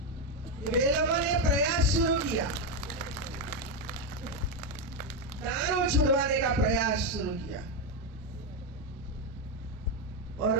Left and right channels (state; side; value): normal; both; correlation 0.07